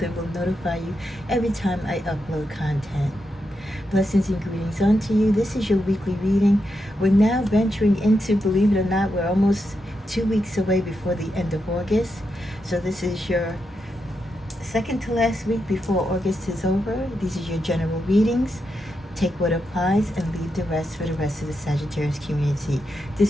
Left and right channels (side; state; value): both; normal; correlation 0.85